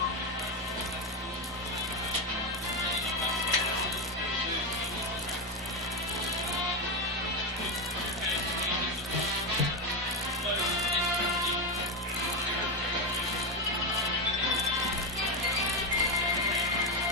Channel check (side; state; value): both; normal; correlation 0.10